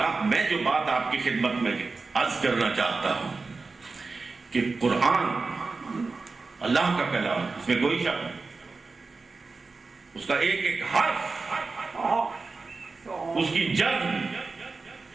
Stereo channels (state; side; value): quieter; left; 4.0 dB